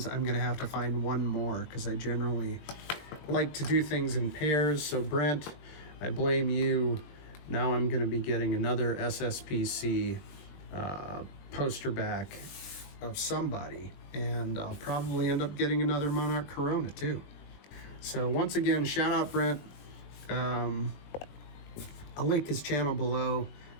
I'm going to have to find one more because I generally like to do things in pairs. So Brent, I blame you. Now I'm going to be getting another SSPC poster back of somebody, and I'll probably end up getting another Monarch Corona too. So once again, shout out Brent. I'll link his channel below.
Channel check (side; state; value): right; late; 21 ms